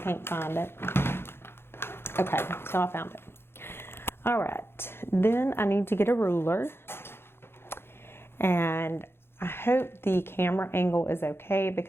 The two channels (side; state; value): right; late; 0.11 ms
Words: find it. Okay, so I found it. All right, then I need to get a ruler. And I hope the camera angle is okay